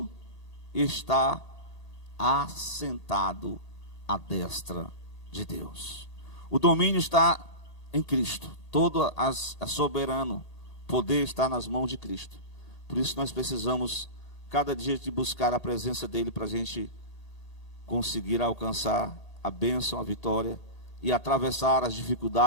está assentado à destra de Deus. O domínio está em Cristo, todo a soberano poder está nas mãos de Cristo. Por isso nós precisamos cada dia de buscar a presença dele para a gente conseguir alcançar a bênção, a vitória e atravessar as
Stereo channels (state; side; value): late; right; 1.8 ms